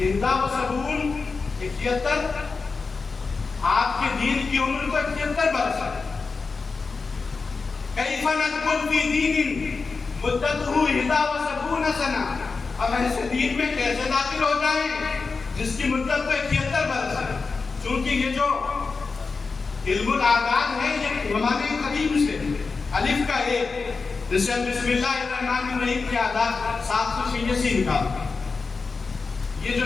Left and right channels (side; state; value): right; quieter; 4.4 dB